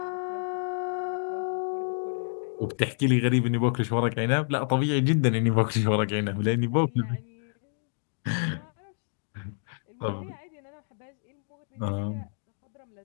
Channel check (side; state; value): right; silent; digital silence